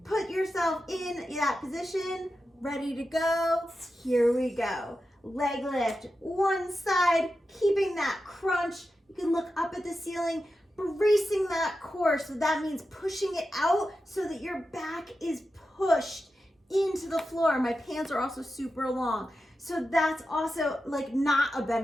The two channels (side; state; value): both; normal; correlation 0.91